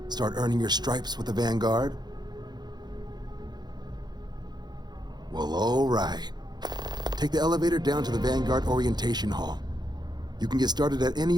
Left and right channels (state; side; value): late; left; 0.20 ms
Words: Start earning your stripes with the Vanguard? Well, all right. Take the elevator down to the Vanguard Orientation Hall. You can get started at any